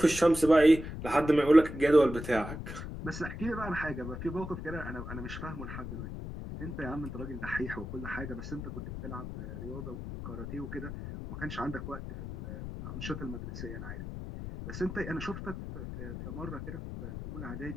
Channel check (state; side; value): noise; left; rumble, 8 dB below the sound